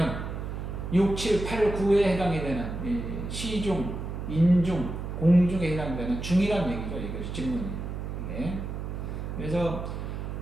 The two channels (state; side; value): noise; right; hum, 6 dB below the sound